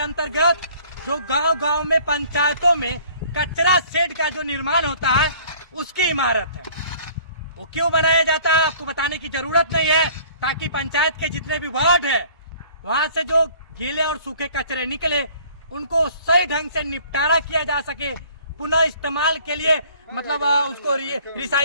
जो गांव-गांव में पंचायतों में कचरा शेड का जो निर्माण होता है उसकी इमारत है। वो क्यों बनाया जाता है आपको बताने की जरूरत नहीं है, ताकि पंचायत के जितने भी वार्ड है वहां से जो गीले और सूखे कचरे निकले उनको सही ढंग से निपटारा किया जा सके, पुनः इस्तेमाल के लिए मतलब उसको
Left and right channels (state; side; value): inverted; both; correlation -0.53